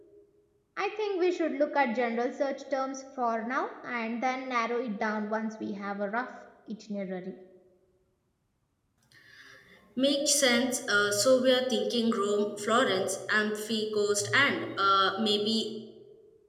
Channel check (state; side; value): identical; both; correlation 1.00